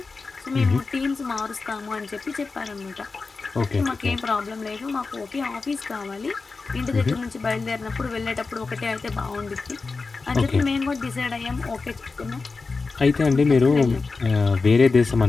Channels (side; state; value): right; quieter; 4.2 dB